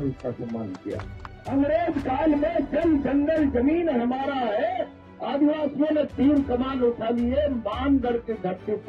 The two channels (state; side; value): identical; both; correlation 1.00